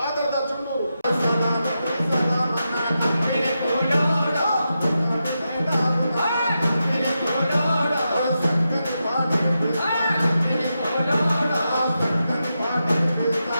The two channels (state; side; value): inverted; both; correlation -0.88